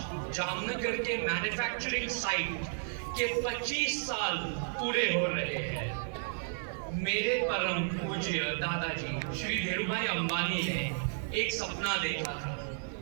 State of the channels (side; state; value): left; silent; digital silence